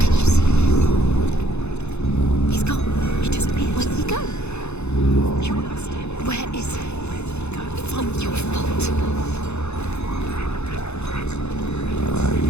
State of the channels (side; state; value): right; late; 0.81 ms